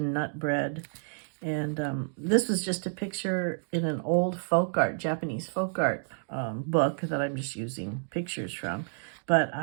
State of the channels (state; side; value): silent; left; digital silence